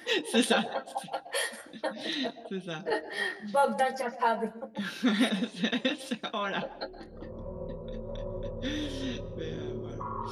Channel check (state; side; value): identical; both; correlation 1.00